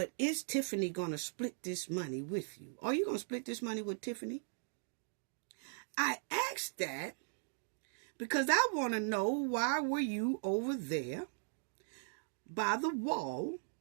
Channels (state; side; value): silent; left; digital silence